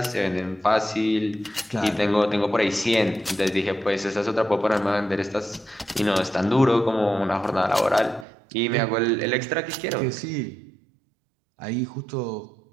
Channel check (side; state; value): left; drops out; at 8.2 s